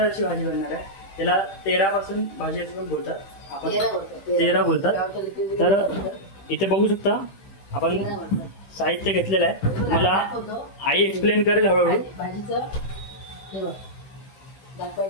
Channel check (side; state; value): right; late; 15 ms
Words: अशी भाजी बनणार आहे। त्याला तेरापासून भाजी असं पण बोलतात, आपण तेरा बोलतात। तर इथे बघू शकता आपण साहित्य घेतलेलं आहे। मला आई एक्सप्लेन करेल हळूहळू।